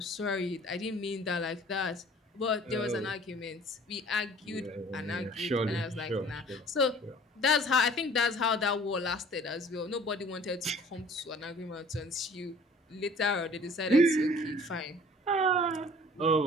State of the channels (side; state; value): both; normal; correlation 0.50